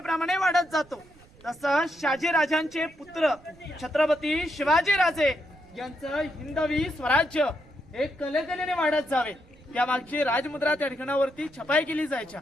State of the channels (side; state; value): right; noise; rumble, 26 dB below the sound